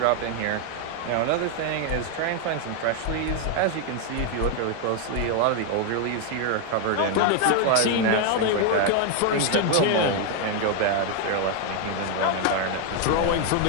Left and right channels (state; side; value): different; both; correlation 0.01